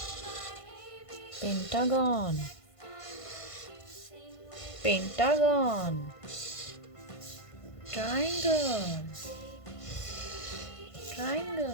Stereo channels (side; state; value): right; late; 1.5 ms